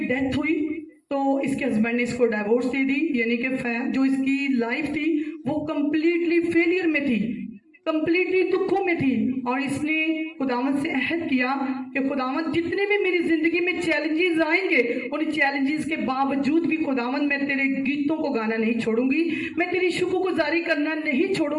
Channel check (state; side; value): identical; both; correlation 1.00